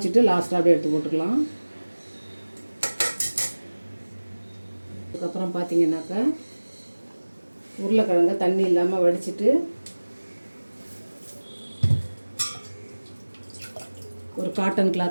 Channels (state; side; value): inverted; both; correlation -1.00